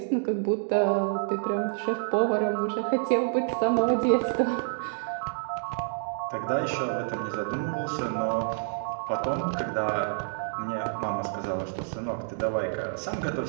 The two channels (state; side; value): silent; left; digital silence